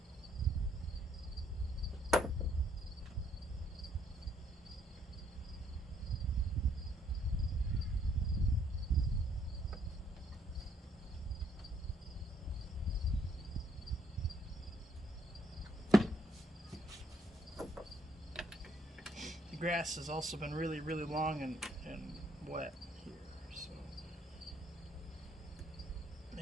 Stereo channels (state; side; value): normal; both; correlation 0.69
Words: The grass has also been really, really long and wet here, so